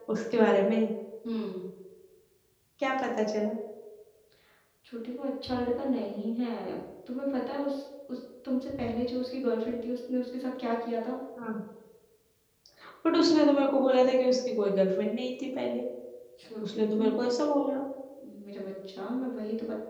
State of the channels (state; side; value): identical; both; correlation 1.00